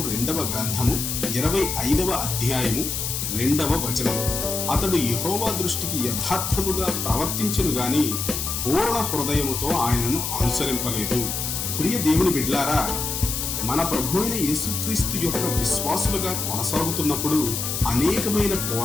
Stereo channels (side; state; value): left; noise; hiss, 3 dB below the sound